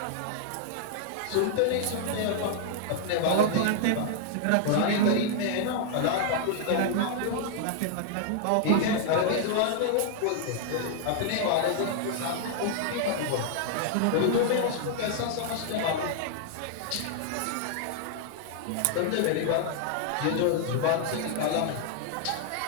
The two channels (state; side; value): different; both; correlation -0.01